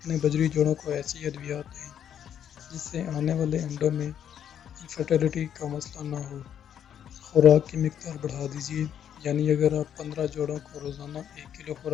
بجری جوڑوں کو ایسی ادویات دیں جس سے آنے والے انڈوں میں انفرٹیلٹی کا مسئلہ نہ ہو۔ خوراک کی مقدار بڑھا دیجیے، یعنی اگر آپ 15 جوڑوں کو روزانہ 1 کلو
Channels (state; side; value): quieter; right; 9.3 dB